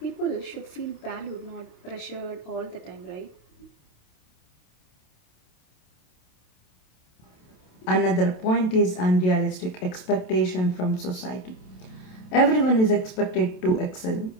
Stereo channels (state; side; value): late; right; 27 ms